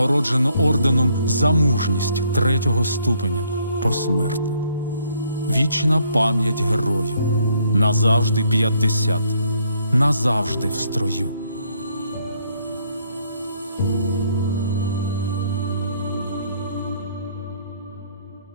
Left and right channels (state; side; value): inverted; both; correlation -0.69